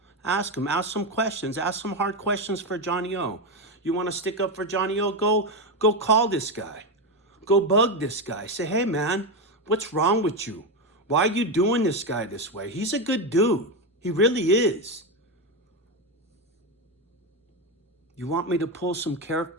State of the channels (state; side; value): normal; both; correlation 0.11